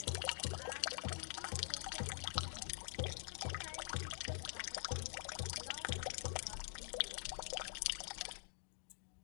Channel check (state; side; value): silent; right; digital silence